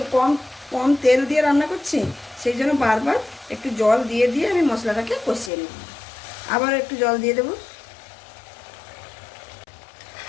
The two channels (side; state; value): right; drops out; at 5.5 s